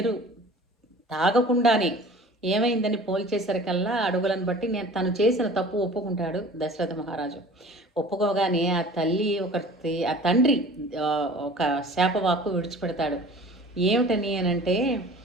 తాగకుండానే ఏమైందని పోల్చేసరికల్లా అడుగులను బట్టి నేను తను చేసిన తప్పు ఒప్పుకుంటాడు దశరథ మహారాజు. ఒప్పుకోగానే ఆ తల్లి ఆ తండ్రి ఒక శాపవాక్కు విడిచిపెడతాడు. ఏమిటని అనంటే,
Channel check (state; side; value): normal; both; correlation 0.44